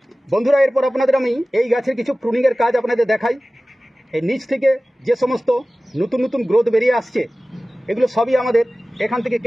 বন্ধুরা, এরপর আপনাদের আমি এই গাছের কিছু প্রুনিংয়ের কাজ আপনাদের দেখাই। এই নিচ থেকে যে সমস্ত নতুন নতুন গ্রোথ বেরিয়ে আসছে, এগুলো সবই আমাদের এখান থেকে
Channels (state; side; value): normal; both; correlation 0.97